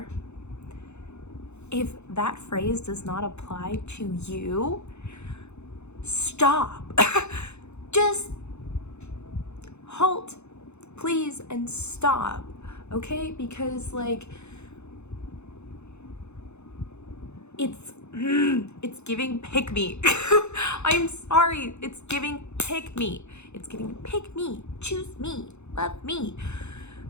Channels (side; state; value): right; late; 0.81 ms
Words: if that phrase does not apply to you, stop. Just halt, please, and stop, okay? Because, like, it's giving pick me. I'm sorry, it's giving pick me. It's giving pick me, choose me, love me.